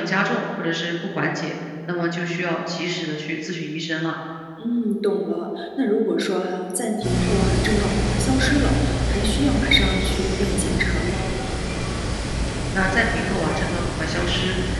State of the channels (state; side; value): identical; both; correlation 1.00